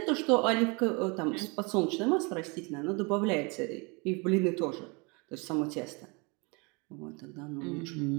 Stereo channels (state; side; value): quieter; left; 29.9 dB